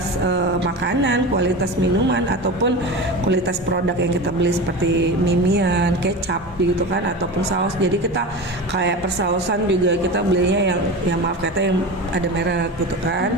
makanan, kualitas minuman ataupun kualitas produk yang kita beli seperti mimian, kecap gitu kan, ataupun saus. Jadi kita kayak persausan juga kita belinya yang maaf kata yang ada merek gitu kan.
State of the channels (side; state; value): both; normal; correlation 0.28